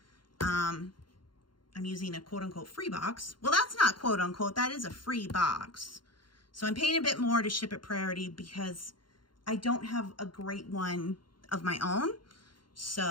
I'm using a quote-unquote free box. Well, that's not quote-unquote. That is a free box. So I'm paying a bit more to ship at priority because I don't have a great one of my own. So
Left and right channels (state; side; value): late; right; 0.72 ms